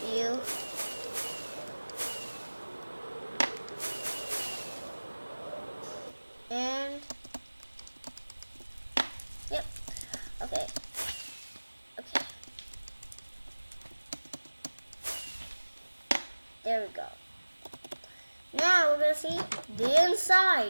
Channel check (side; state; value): both; inverted; correlation -1.00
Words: View. And yep. Okay. There we go. Now we're gonna see the